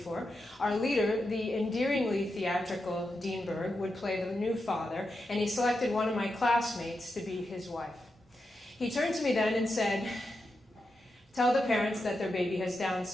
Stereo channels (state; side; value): normal; both; correlation 0.87